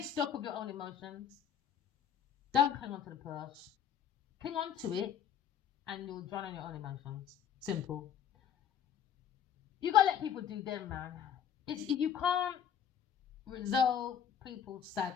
stock of your own emotions. Don't cling on to the past. Cling on to it and you'll drown on your own emotions. Simple. You gotta let people do them, man. You can't resolve people's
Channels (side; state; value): right; quieter; 8.6 dB